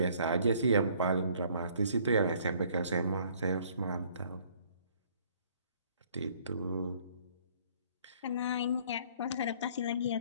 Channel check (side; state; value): both; inverted; correlation -0.59